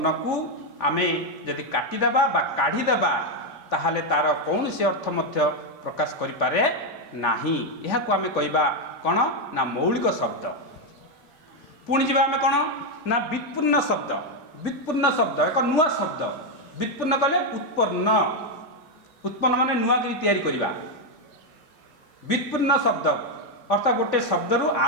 को आम जदि काटिदेबा बा काढ़ीदेबा ताहले तार कौन सी अर्थ मध्य प्रकाश करि पारे नाही। यह को आम कहबा कौन ना मौलिक शब्द। पुणी जी आम कौन ना व्युत्पन्न शब्द। व्युत्पन्न शब्द एक नुआ शब्द व्युत्पन्न कले उत्पन्न उत्पन्न माने नुआ करी तैयारी करबा व्युत्पन्न शब्द अर्थात गोटे शब्द रु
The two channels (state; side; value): normal; both; correlation 0.03